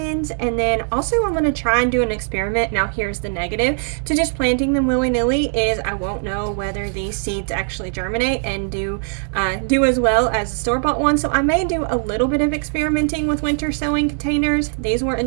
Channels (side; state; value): left; silent; 56 dB below the other